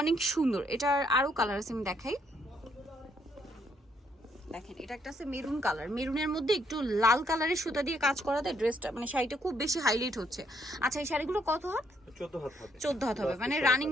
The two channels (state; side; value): normal; both; correlation 0.71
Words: সুন্দর। এটার আরও কালার আছে, আমি দেখাই। দেখেন, এটা একটা আছে মেরুন কালার, মেরুনের মধ্যে একটু লাল কালারের সুতা দিয়ে কাজ করাতে ড্রেসটা মানে শাড়িটা খুব বেশি হাইলাইট হচ্ছে। আচ্ছা, এই শাড়িগুলো কত হাত? 14 হাত হবে, মানে রানিং